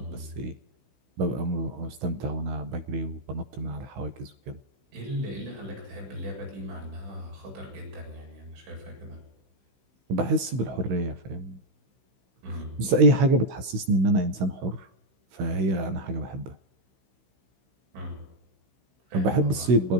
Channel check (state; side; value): late; left; 16 ms